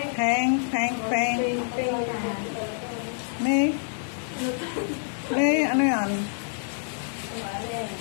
Peng. Peng. Peng. May ano yan?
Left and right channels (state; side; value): silent; right; digital silence